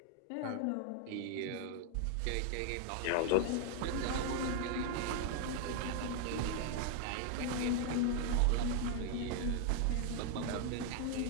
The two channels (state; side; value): different; both; correlation 0.00